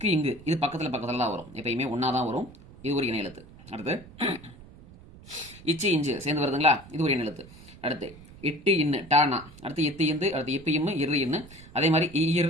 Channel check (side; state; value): right; noise; rumble, 20 dB below the sound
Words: இங்கு இது பக்கத்தில் தான் வரும், எப்பயுமே ஒன்றா தான் வரும். இது ஒரு இணை எழுத்து. அடுத்து இச்சு இஞ்சு சேர்ந்து வருதுங்களா, இது ஒரு இணை எழுத்து. அடுத்து இட்டு இன்னு டானா, அடுத்து இத்து இந்து, அடுத்து இப்ப இம்மு இரு இன்னு, அதே மாதிரி